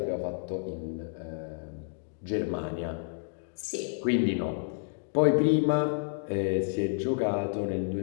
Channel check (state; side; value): silent; right; digital silence